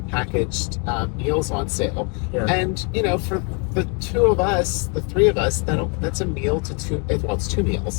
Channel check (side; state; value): right; quieter; 35.3 dB